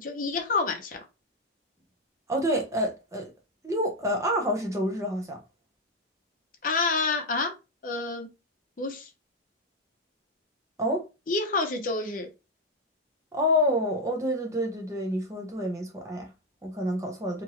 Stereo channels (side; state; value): both; normal; correlation 0.05